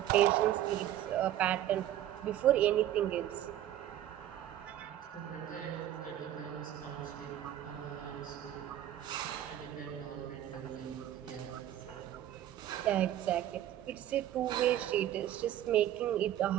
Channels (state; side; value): quieter; left; 12.2 dB